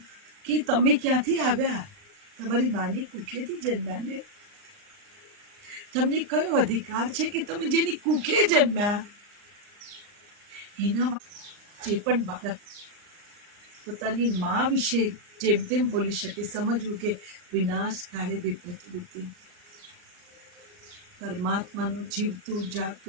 કે તમે ક્યાંથી આવ્યા? તમારી માની કુખેથી જન્મ્યા ને? તમને કયો અધિકાર છે કે તમે જેની કુખે જન્મ્યા એના જે પણ બાળક પોતાની મા વિશે જેમ તેમ બોલી શકે, સમજવું કે વિનાશ કાળે વિપરીત બુદ્ધિ. પરમાત્માનું જીવતું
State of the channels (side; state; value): left; late; 39 ms